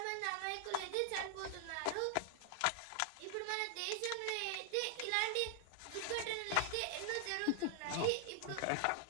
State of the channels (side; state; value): both; different; correlation 0.00